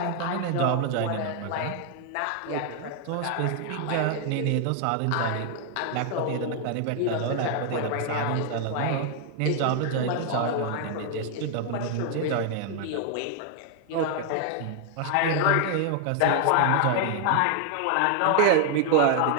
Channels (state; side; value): different; both; correlation 0.00